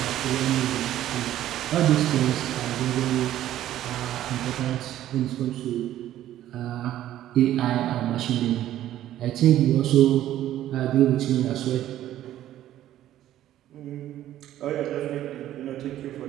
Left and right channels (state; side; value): quieter; left; 12.8 dB